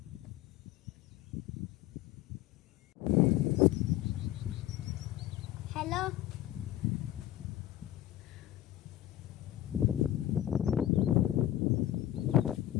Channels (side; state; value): right; quieter; 13.2 dB